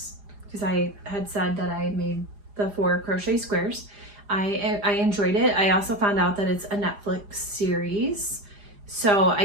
because I had said that I made the 4 crochet squares. I enjoyed it. I also found out that it's a Netflix series. So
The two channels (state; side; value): late; left; 4.9 ms